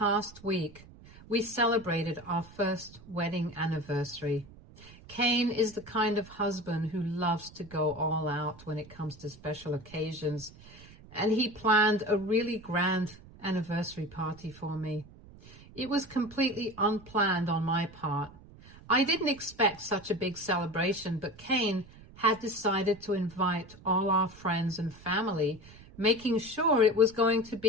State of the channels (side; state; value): right; noise; rumble, 21 dB below the sound